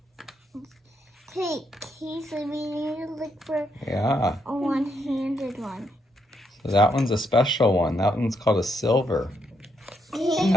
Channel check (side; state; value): both; normal; correlation 0.77